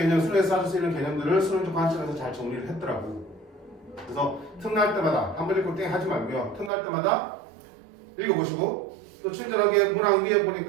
수능에서 따질 수 있는 개념들을 수능적 관점에서 잘 정리를 했더라고. 그래서 틈날 때마다 한 번 읽고 땡 하지 말고요. 틈날 때마다 읽어보시고 또 친절하게 문항 위에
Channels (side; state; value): left; drops out; at 6.7 s